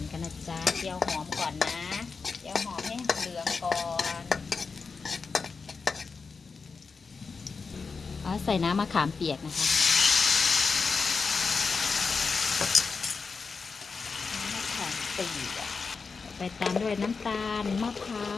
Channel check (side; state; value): right; quieter; 4.8 dB